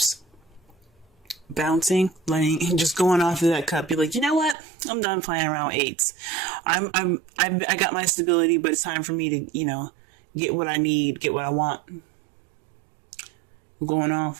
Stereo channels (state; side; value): drops out; left; at 4.5 s